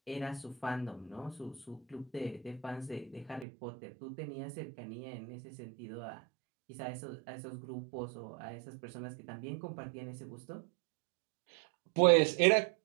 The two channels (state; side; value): drops out; left; at 3.5 s